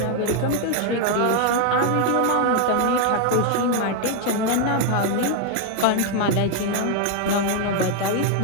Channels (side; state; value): both; different; correlation 0.00